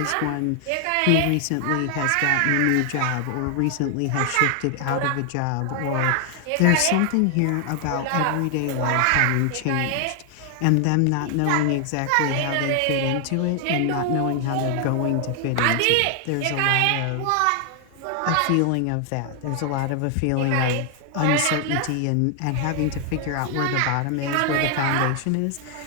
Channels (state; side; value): different; both; correlation 0.00